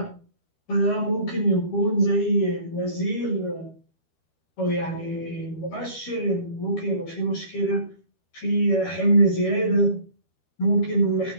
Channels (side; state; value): right; late; 13 ms